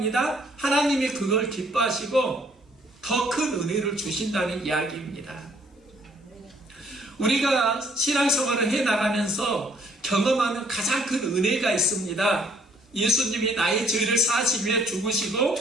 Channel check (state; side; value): normal; both; correlation 0.62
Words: 하나님이 그걸 기뻐하시고 더 큰 은혜를 주신다는 이야기입니다. 우리가 신앙생활을 해나가면서 경험하는 가장 큰 은혜가 있습니다. 예수님이 나의 죄를 사하시기 위해 죽으시고